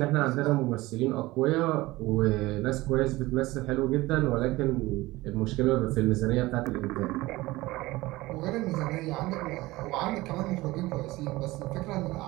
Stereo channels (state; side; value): quieter; left; 19.5 dB